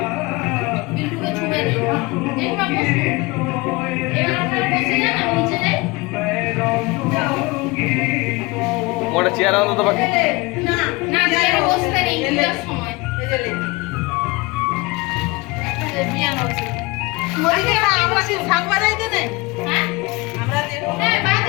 বিল্টুকে ছুঁয়ে নেই। দেখবা বসো। এবার আপনারা বসে যান, আমি নিচে যাই। ওটা চেয়ার আনো তো বাকি। না না, চেয়ারে বসতে নেই পূজার সময়। মরিকে আমরা কি শাক বাজাইতে নেই? হ্যাঁ আমরা যে হ্যাঁ,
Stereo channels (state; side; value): quieter; right; 24.1 dB